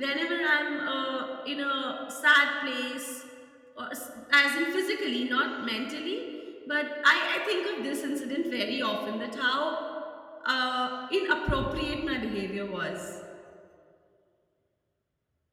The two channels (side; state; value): both; identical; correlation 1.00